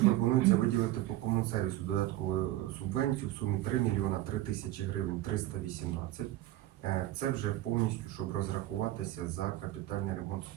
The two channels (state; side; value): quieter; left; 15.1 dB